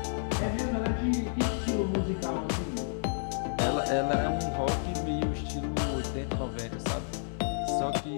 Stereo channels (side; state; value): right; silent; digital silence